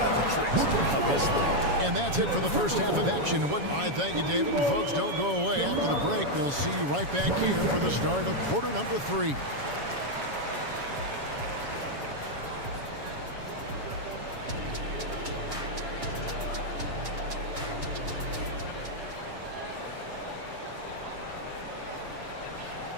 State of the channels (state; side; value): late; left; 7.2 ms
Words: of tricks up his sleeve. And that's it for the first half of action. I thank you, David. And folks, don't go away. After the break, we'll see you right back here for the start of quarter number 3.